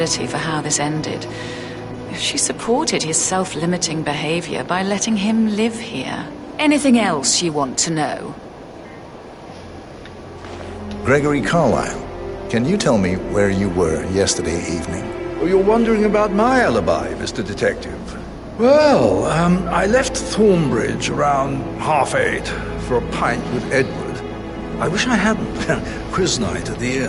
for how this ended. She supported his self-limiting behavior by letting him live here. Anything else you want to know? Gregory Carlyle, can you tell me where you were yesterday evening? Oh, you're wondering about my alibi, Mr. Detective. Well, I left Thornbridge around 8:30 for a pint with Edward. I wish I hadn't. Quiz night at the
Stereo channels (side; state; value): both; identical; correlation 1.00